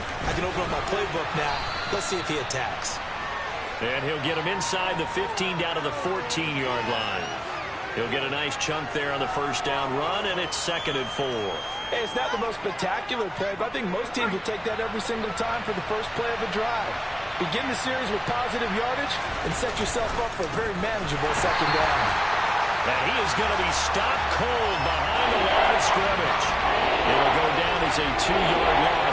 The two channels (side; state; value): both; identical; correlation 1.00